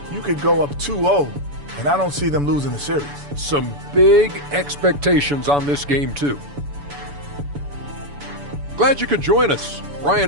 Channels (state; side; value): late; left; 7.0 ms